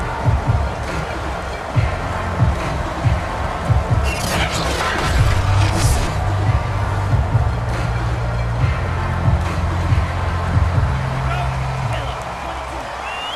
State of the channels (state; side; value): identical; both; correlation 1.00